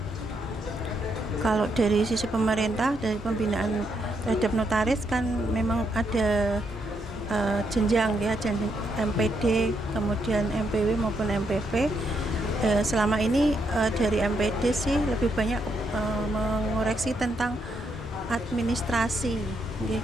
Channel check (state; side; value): normal; both; correlation 0.78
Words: Kalau dari sisi pemerintah, dari pembinaan terhadap notaris kan memang ada jenjang ya, jenjang MPD, kemudian MPW maupun MPP. Selama ini dari MPD sih lebih banyak mengoreksi tentang administrasi